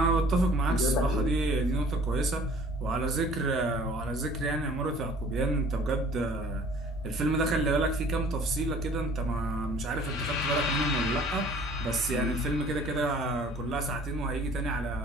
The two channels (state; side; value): normal; both; correlation 0.52